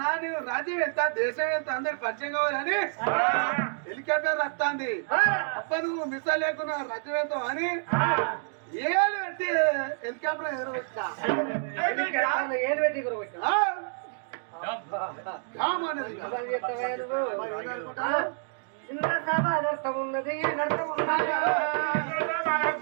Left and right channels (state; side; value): silent; left; digital silence